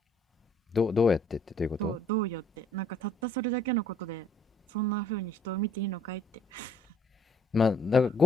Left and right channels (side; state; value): both; normal; correlation 0.60